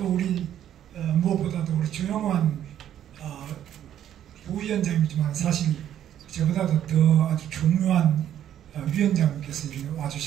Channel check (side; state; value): left; quieter; 10.7 dB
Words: 우리 무엇보다도 우리 조영환 부위원장이지만 사실 저보다도 더 아주 중요한 위원장님께서